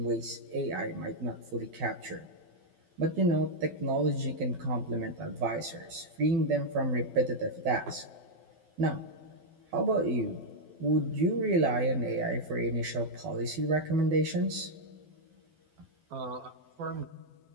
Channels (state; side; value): late; left; 12 ms